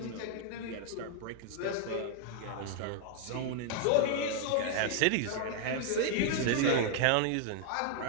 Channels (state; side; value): different; both; correlation 0.00